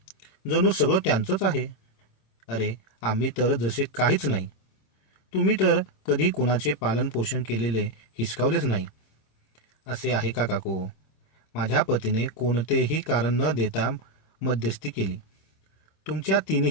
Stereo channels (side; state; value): right; late; 26 ms